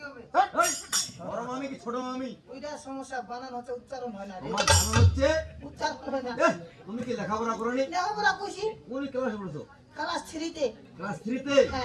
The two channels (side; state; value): both; identical; correlation 1.00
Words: হবে এই বড় মামি কি ছোট মামি? ওইটা সমস্যা বানান হচ্ছে উচ্চারণ হয় না রে আমার জানা হচ্ছে উচ্চারণ হয় না এ তুমি কি লেখাপড়া করনি? লেখাপড়া কইছি কোন ক্লাসে পড়ছো? ক্লাস 3 তে ক্লাস 3 তে?